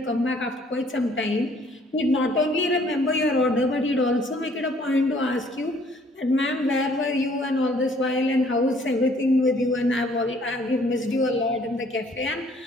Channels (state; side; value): normal; both; correlation 0.60